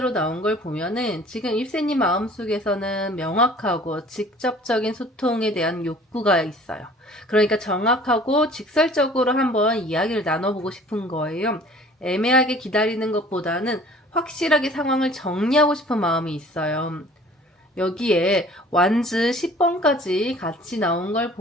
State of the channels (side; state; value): both; normal; correlation 0.50